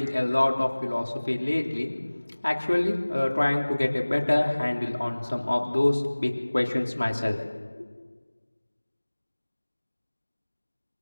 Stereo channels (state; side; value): inverted; both; correlation -1.00